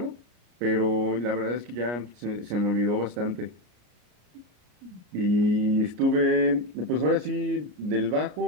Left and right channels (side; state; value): left; late; 33 ms